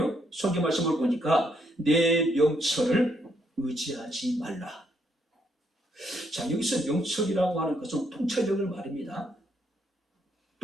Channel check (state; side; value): normal; both; correlation 0.73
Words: 성경 말씀을 보니까 내 명철을 의지하지 말라. 자, 여기서 명철이라고 하는 것은 통찰력을 말합니다.